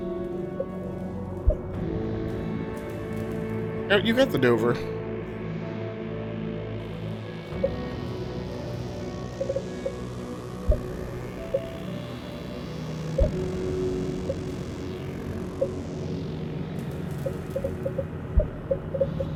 Oh, you got the Dover.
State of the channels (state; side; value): identical; both; correlation 1.00